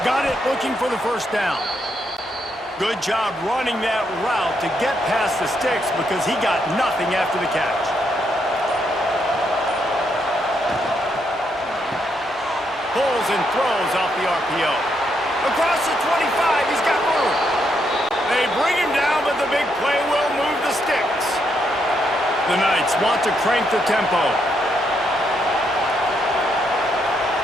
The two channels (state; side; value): normal; both; correlation 0.77